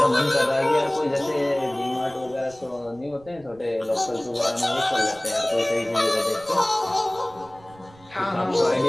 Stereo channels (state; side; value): noise; right; rumble, 25 dB below the sound